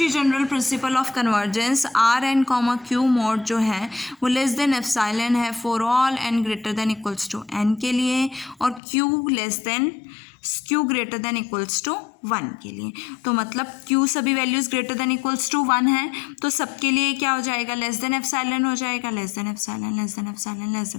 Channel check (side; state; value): right; drops out; at 8.8 s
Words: general principle of convergence R N comma Q mod जो है वो लेस देन एप्सिलॉन है for all N greater than equals to N के लिए, और Q less than Q greater than equals to one के लिए। तो मतलब क्यू सभी values greater than equals to one है, तो सबके लिए क्या हो जाएगा, लेस देन एप्सिलॉन हो जाएगा, less than epsilon less than epsilon less